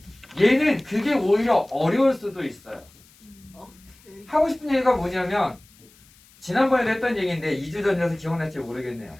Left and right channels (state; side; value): noise; left; hiss, 28 dB below the sound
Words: 얘는 그게 오히려 어려울 수도 있어요. 하고 싶은 얘기가 뭐냐면 지난번에도 했던 얘기인데 2주 전이라서 기억날지 모르겠네요.